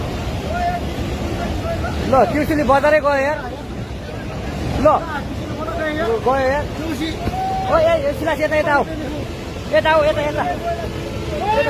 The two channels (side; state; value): both; identical; correlation 1.00